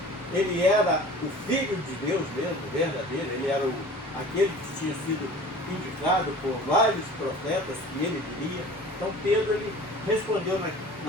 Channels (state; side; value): normal; both; correlation 0.43